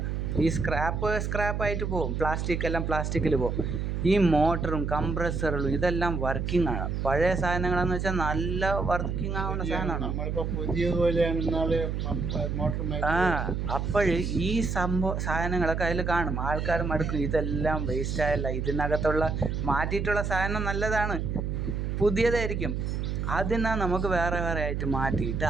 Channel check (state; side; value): noise; right; hum, 2 dB below the sound